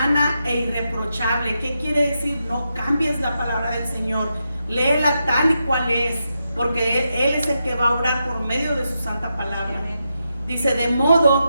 e irreprochable. ¿Qué quiere decir? No cambies la palabra del Señor. Léela tal y cual es, porque Él es el que va a orar por medio de su santa palabra. Dice, de modo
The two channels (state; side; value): inverted; both; correlation -0.86